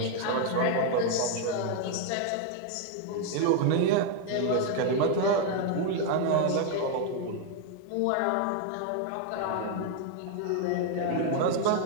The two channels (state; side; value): different; both; correlation 0.00